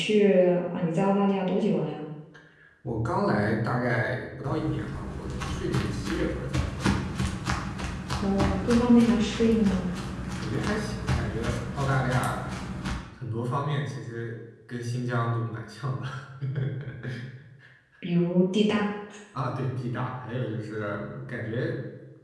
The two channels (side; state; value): both; identical; correlation 1.00